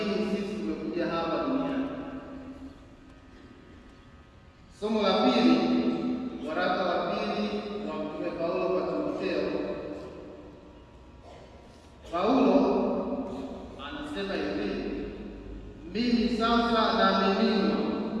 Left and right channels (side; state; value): both; identical; correlation 1.00